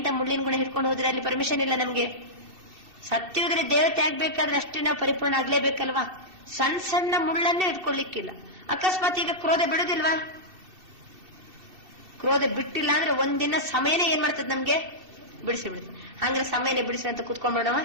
ಮುಳ್ಳಿನ ಗುಣ ಹಿಡ್ಕೊಂಡು ಹೋದ್ರೆ ಅಲ್ಲಿ ಪರ್ಮಿಷನ್ ಇಲ್ಲ ನಮ್ಗೆ. ಸತ್ಯದಲ್ಲಿ ದೇವತೆ ಆಗ್ಬೇಕಾದ್ರೆ ಅಷ್ಟೇ ನಾವು ಪರಿಪೂರ್ಣ ಆಗ್ಲೇಬೇಕಲ್ವಾ? ಸಣ್ಣ ಸಣ್ಣ ಮುಳ್ಳನ್ನೇ ಇಟ್ಕೊಳ್ಳಿಕ್ಕಿಲ್ಲ. ಅಕಸ್ಮಾತ್ ಈಗ ಕ್ರೋಧ ಬಿಡುದಿಲ್ವಾ? ಕ್ರೋಧ ಬಿಟ್ಟಿಲ್ಲ ಅಂದ್ರೆ ಒಂದಿನ ಸಮಯನೇ ಏನ್ ಮಾಡ್ತದೆ ನಮ್ಗೆ? ಬಿಡಿಸಿ ಬಿಡುತ್ತೆ. ಹಂಗ್ರೆ ಸಮಯನೇ ಬಿಡಿಸಿ ಅಂತ ಕುತ್ಕೊಂಡ್ಬಿಡವ.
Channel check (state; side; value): late; left; 3.0 ms